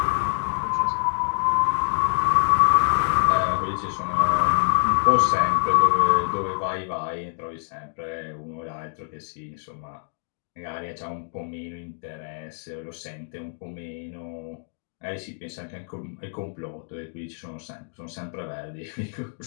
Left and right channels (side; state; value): right; silent; digital silence